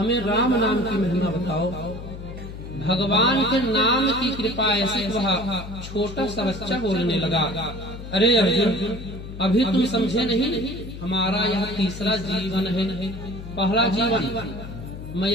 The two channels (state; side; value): noise; left; hum, 11 dB below the sound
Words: राम नाम की महिमा बताओ। भगवान के नाम की कृपा ऐसी वह छोटा सा बच्चा बोलने लगा, अरे अर्जुन अभी तुम समझे नहीं, हमारा यह तीसरा जीवन है। पहला जीवन मैं